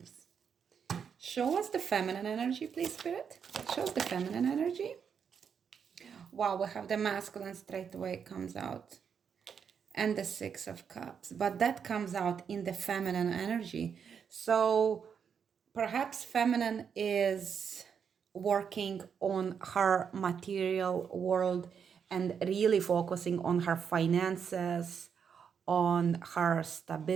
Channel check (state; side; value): quieter; left; 7.0 dB